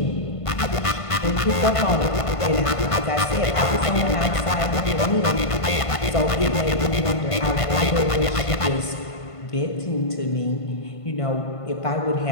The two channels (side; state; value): right; late; 1.5 ms